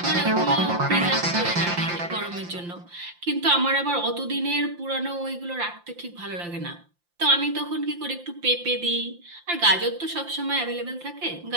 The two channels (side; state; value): left; late; 5.8 ms